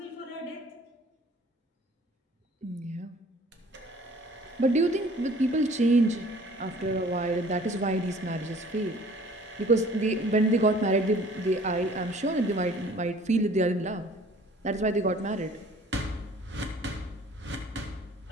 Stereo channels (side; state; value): both; normal; correlation 0.52